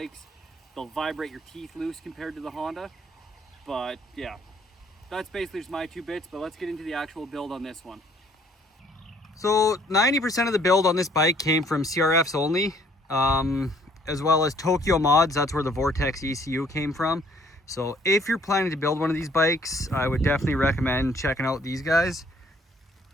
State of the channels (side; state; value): both; normal; correlation 0.61